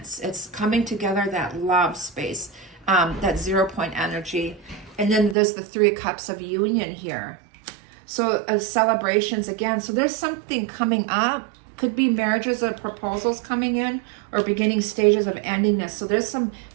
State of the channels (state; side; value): drops out; left; at 5.4 s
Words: It's coming together, that love space, that 0 point energy. And then there's the 3 of Cups of union here. So celebrations again. So there's something coming up. Could be marriages or proposals coming in, or beginning stages of endingness. So there's some